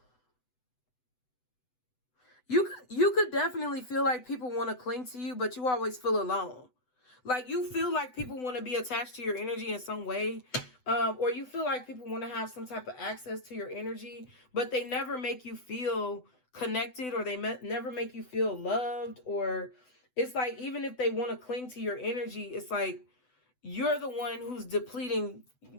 You could definitely feel like people want to cling to you, but you always feel alone. Like you feel like people want to be attached to your energy in some way. Or you feel like people want to have some type of access to your energy, but they never make you feel connected, or they never make you feel loved. Or it's like, even if they want to cling to your energy, it's like you're the one who's depleting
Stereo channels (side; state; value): right; late; 7.9 ms